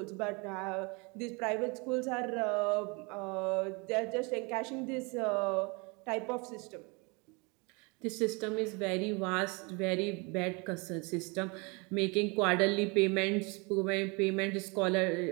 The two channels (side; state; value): left; quieter; 29.6 dB